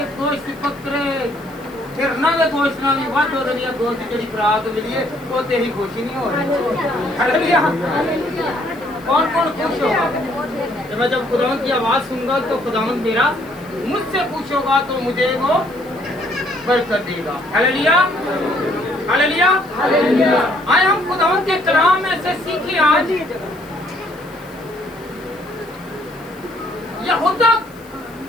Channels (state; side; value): noise; left; hiss, 26 dB below the sound